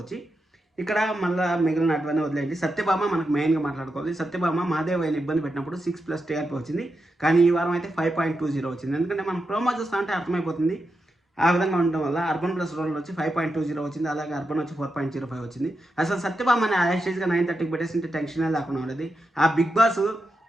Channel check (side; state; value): both; normal; correlation 0.87